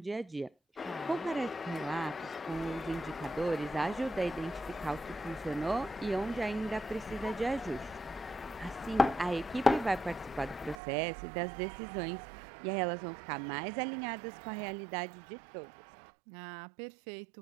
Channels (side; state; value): left; drops out; at 10.8 s